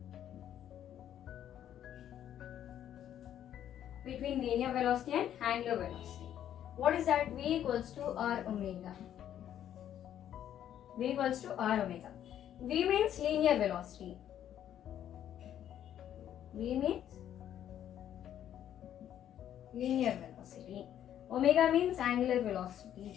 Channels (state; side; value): quieter; right; 10.6 dB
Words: between linear velocity and angular velocity. What is that? V equals to R omega. V equals to R omega. V means linear velocity. V means linear velocity. Omega means angular